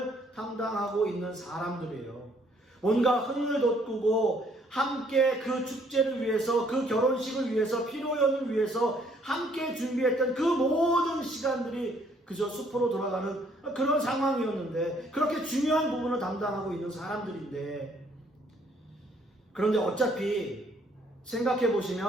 담당하고 있는 사람들이에요. 뭔가 흥을 돋구고 함께 그 축제를 위해서, 그 결혼식을 위해서, 피로연을 위해서 함께 준비했던 그 모든 시간들이 그저 숲으로 돌아가는 그런 상황이었는데, 그렇게 중요한 부분을 담당하고 있는 사람들인데, 그런데 어차피 생각해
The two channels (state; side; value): normal; both; correlation 0.65